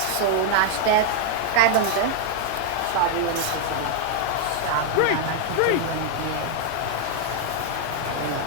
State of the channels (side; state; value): both; different; correlation 0.00